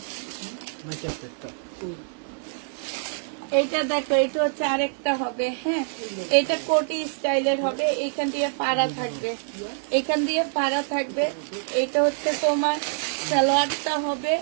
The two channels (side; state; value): left; silent; digital silence